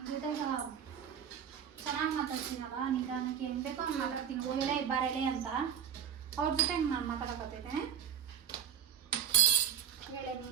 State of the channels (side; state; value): left; quieter; 8.5 dB